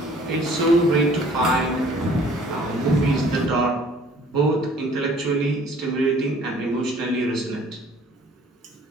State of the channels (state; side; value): normal; both; correlation 0.55